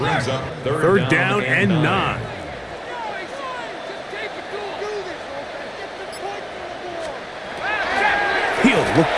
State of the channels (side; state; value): both; identical; correlation 1.00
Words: up Third down and 9. He'll look